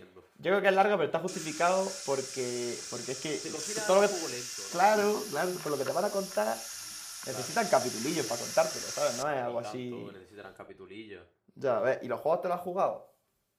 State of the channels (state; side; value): identical; both; correlation 1.00